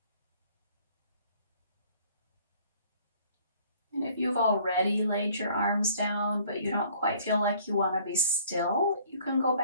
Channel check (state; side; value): inverted; both; correlation -0.57